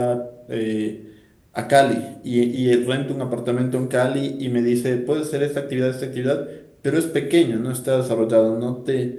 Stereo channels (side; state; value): both; identical; correlation 1.00